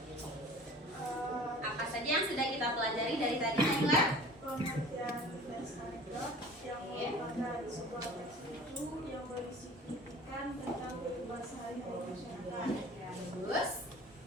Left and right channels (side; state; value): both; normal; correlation 0.44